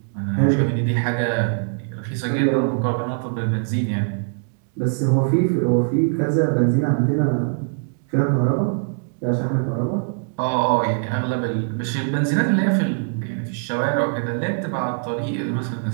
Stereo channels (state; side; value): silent; left; digital silence